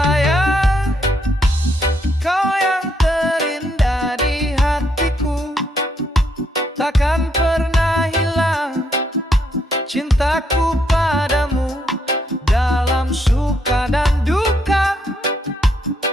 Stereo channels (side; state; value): both; normal; correlation 0.75